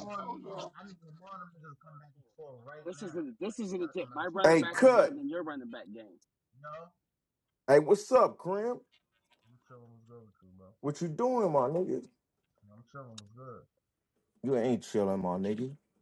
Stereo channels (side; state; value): both; identical; correlation 1.00